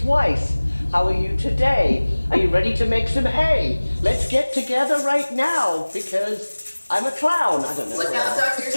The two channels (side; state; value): both; inverted; correlation -1.00